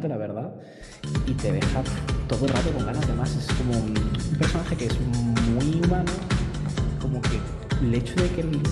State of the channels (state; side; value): identical; both; correlation 1.00